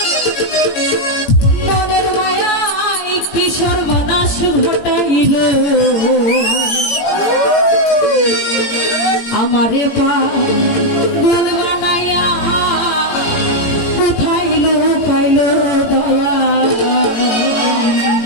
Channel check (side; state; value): right; late; 18 ms